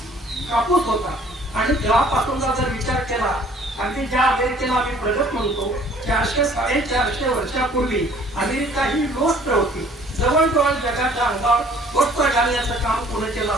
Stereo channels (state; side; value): normal; both; correlation 0.55